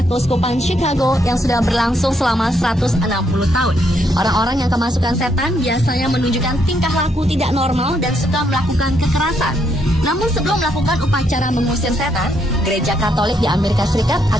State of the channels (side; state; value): both; normal; correlation 0.75